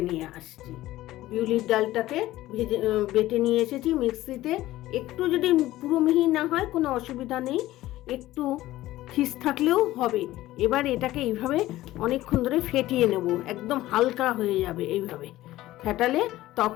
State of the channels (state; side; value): quieter; right; 15.9 dB